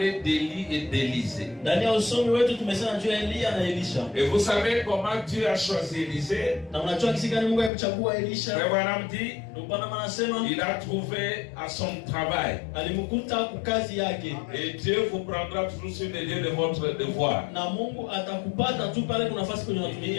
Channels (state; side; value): drops out; right; at 7.7 s